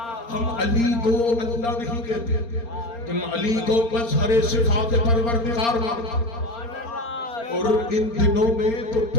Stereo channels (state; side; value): late; right; 4.3 ms